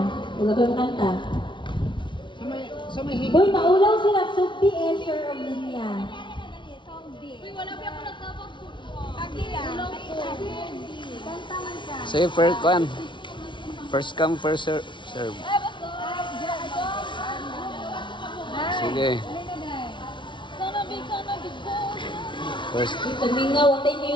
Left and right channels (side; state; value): right; late; 0.24 ms